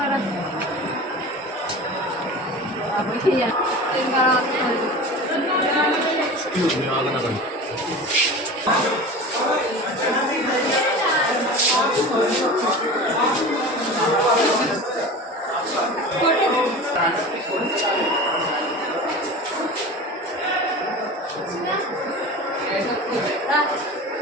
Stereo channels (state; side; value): normal; both; correlation 0.33